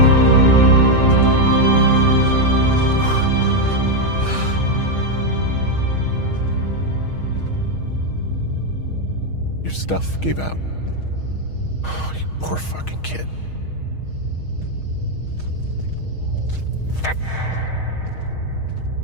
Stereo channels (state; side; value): late; right; 6.4 ms